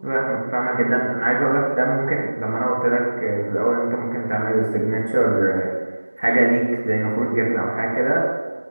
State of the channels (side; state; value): both; inverted; correlation -1.00